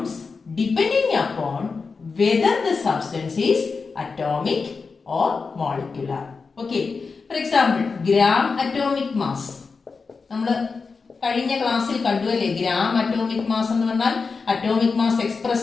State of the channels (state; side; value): quieter; right; 4.7 dB